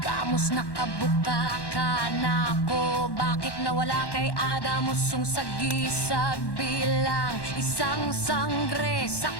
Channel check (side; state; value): right; late; 1.1 ms